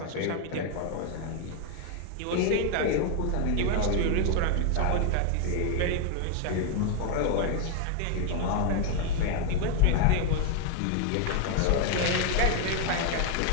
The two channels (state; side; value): different; both; correlation 0.00